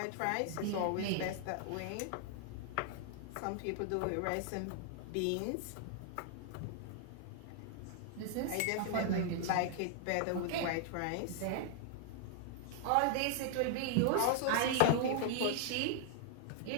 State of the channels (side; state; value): both; different; correlation -0.01